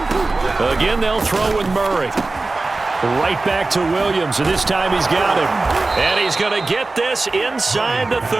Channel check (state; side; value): quieter; left; 3.4 dB